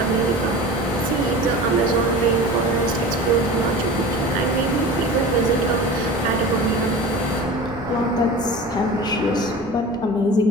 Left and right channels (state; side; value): normal; both; correlation 0.35